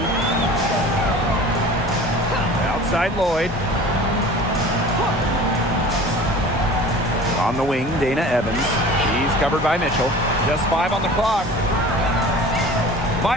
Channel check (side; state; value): both; normal; correlation 0.41